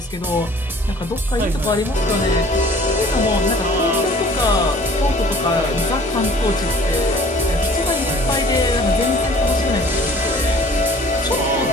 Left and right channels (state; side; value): normal; both; correlation 0.51